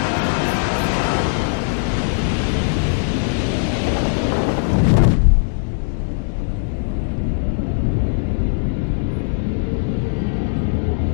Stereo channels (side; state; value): right; silent; digital silence